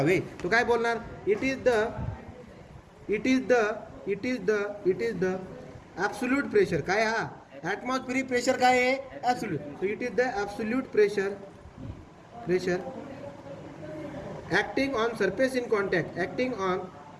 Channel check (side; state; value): both; identical; correlation 1.00